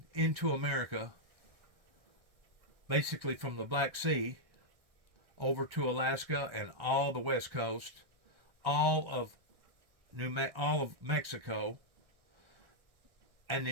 into America, basically from the Black Sea over to Alaska and all the West Coast, all of Mexico, and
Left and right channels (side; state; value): left; late; 1.6 ms